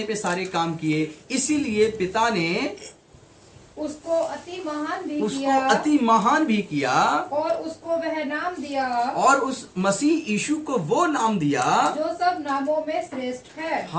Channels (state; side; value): identical; both; correlation 1.00